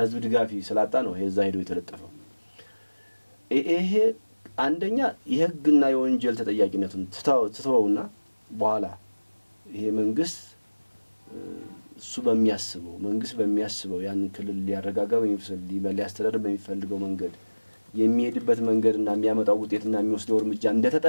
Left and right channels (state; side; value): inverted; both; correlation -1.00